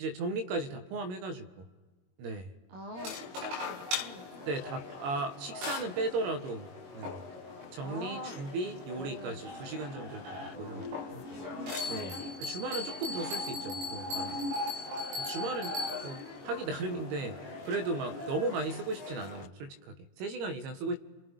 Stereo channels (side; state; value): left; late; 22 ms